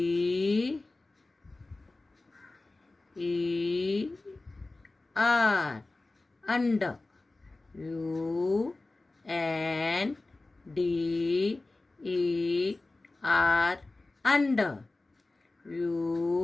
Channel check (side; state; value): right; quieter; 3.1 dB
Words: E R, under. U N D E R, under.